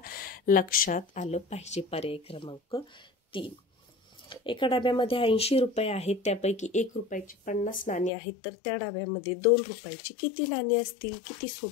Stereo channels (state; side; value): drops out; right; at 8.1 s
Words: लक्षात आलं पाहिजे. पर्याय क्रमांक 3. एका डब्यामध्ये 80 रुपये आहेत, त्यापैकी 1 रुपयाची 50 नाणी आहेत, तर त्या डब्यामध्ये 2 रुपयाची किती नाणी असतील. किती